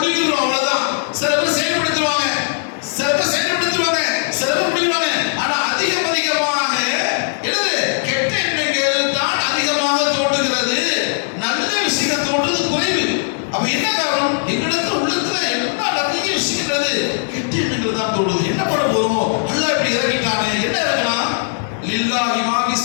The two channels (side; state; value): right; silent; digital silence